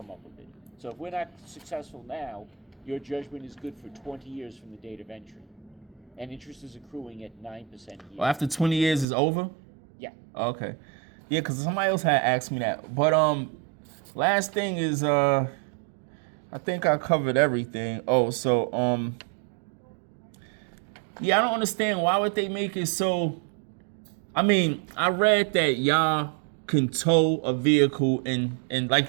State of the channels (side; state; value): left; drops out; at 9.1 s